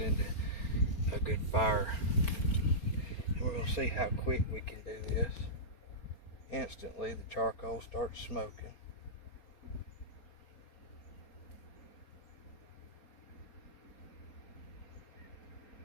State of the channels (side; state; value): right; late; 4.2 ms